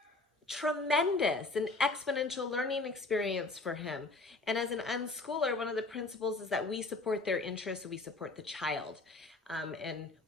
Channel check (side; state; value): right; quieter; 3.3 dB